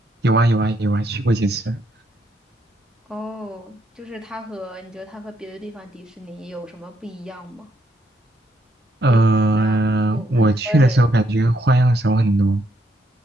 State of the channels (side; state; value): both; normal; correlation 0.74